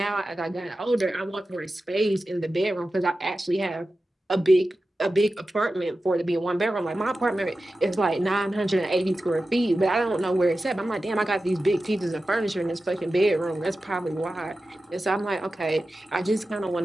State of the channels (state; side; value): normal; both; correlation 0.93